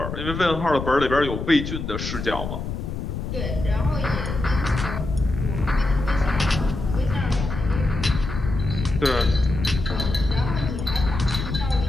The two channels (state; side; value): noise; left; rumble, 5 dB below the sound